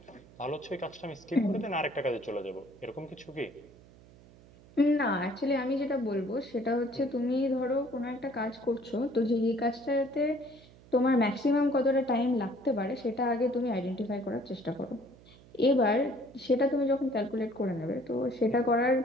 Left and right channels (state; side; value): noise; right; hum, 24 dB below the sound